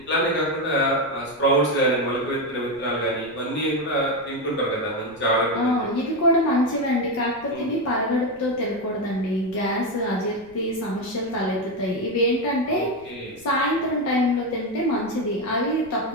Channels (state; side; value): noise; right; rumble, 25 dB below the sound